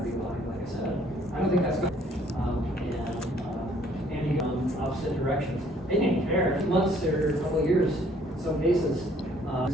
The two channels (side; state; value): both; normal; correlation 0.61